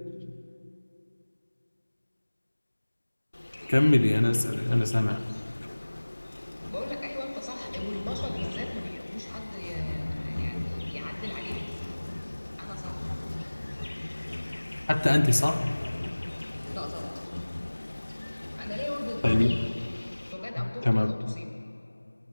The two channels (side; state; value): both; inverted; correlation -1.00